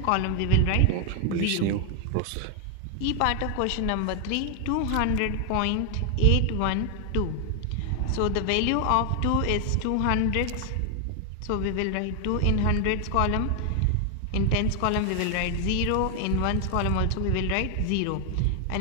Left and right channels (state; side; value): different; both; correlation 0.00